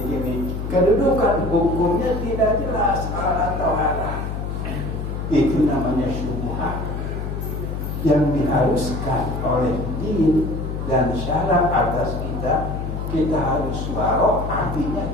kedudukan hukumnya tidak jelas halal atau haram. Itu namanya syubhat yang diharuskan oleh din dan syarat atas kita harus waro, artinya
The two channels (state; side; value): noise; left; hum, 4 dB below the sound